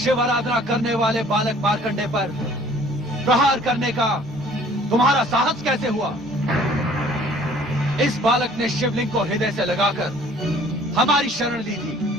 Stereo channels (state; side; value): normal; both; correlation 0.54